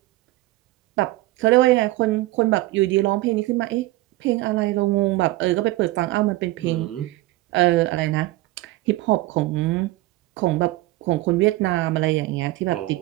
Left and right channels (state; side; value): quieter; left; 18.3 dB